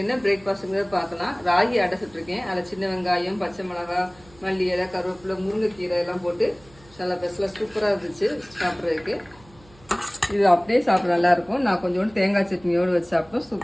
என்ன பிரேக்ஃபாஸ்ட்டுங்கிறத பார்க்கலாம். ராகி அடை சுட்டுருக்கேன். அதில் சின்ன வெங்காயம், பச்சை மிளகாய், மல்லி இலை, கருவேப்பிலை, முருங்கைக்கீரை எல்லாம் போட்டு நல்லா பெஸ்ட்லாம் சூப்பராக இருந்துச்சு சாப்பிட்றதுக்கு. இது அப்படியே சாப்பிட நல்லாயிருக்கும். நான் கொஞ்சோண்டு தேங்காய் சட்னியோடு வச்சு சாப்பிட்டோம்,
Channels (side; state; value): right; noise; hum, 26 dB below the sound